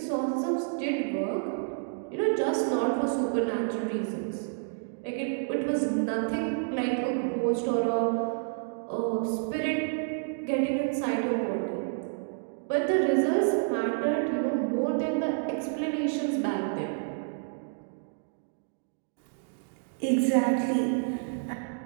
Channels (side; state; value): left; silent; digital silence